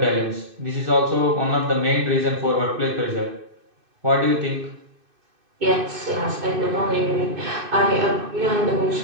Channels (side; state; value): left; late; 2.6 ms